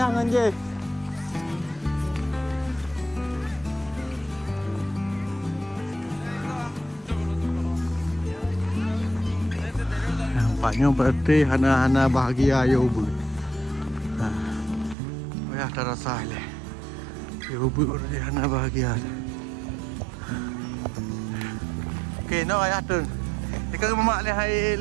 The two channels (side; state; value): left; drops out; at 15.0 s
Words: nganje. Nampaknya berarti hana bahagia ya ubu. Ayah terasa le. Ya ubu berarti hana bahagia. Okay, no ayah tu. Ikaw mamak le hai